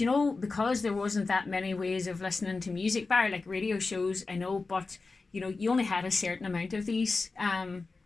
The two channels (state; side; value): quieter; right; 3.9 dB